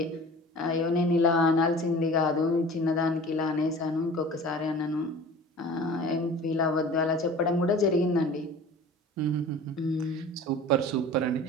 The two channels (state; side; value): normal; both; correlation 0.41